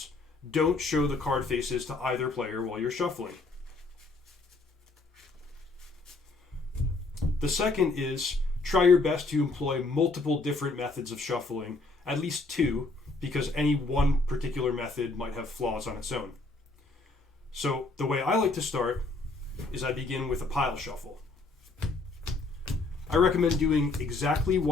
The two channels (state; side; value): quieter; right; 3.4 dB